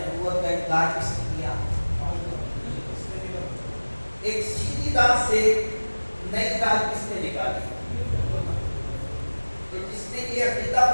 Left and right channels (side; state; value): both; inverted; correlation -1.00